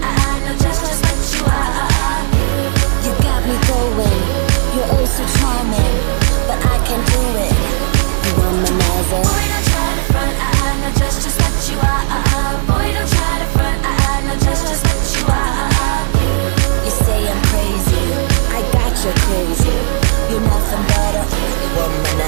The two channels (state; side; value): silent; left; digital silence